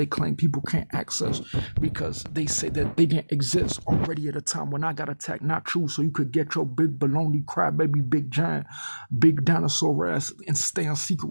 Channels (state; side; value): inverted; both; correlation -1.00